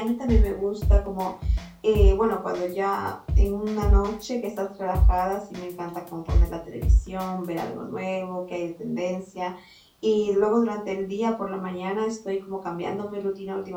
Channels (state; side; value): identical; both; correlation 1.00